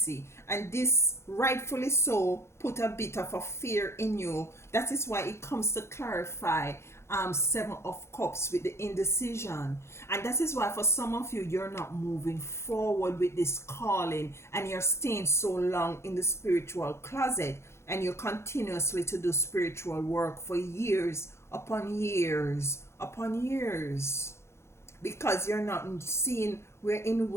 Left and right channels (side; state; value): right; late; 0.13 ms